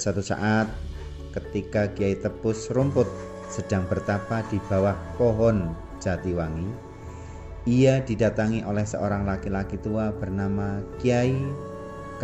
saat ketika Kiai Tepus Rumput sedang bertapa di bawah pohon Jatiwangi, ia didatangi oleh seorang laki-laki tua bernama Kiai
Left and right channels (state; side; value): identical; both; correlation 1.00